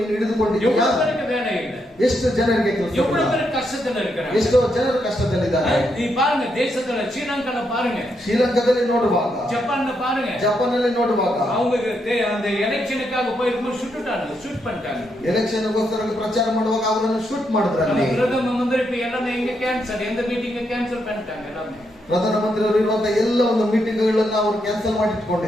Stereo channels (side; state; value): both; normal; correlation 0.80